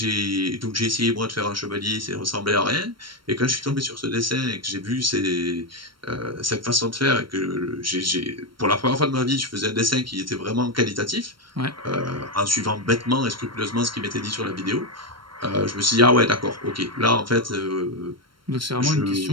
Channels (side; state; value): left; late; 0.73 ms